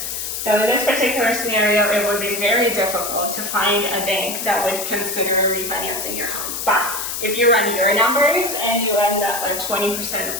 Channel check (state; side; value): noise; left; hiss, 4 dB below the sound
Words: So in this particular scenario, it would be very difficult to find a bank that would consider refinancing your home. But if you run your numbers and you end up at 20%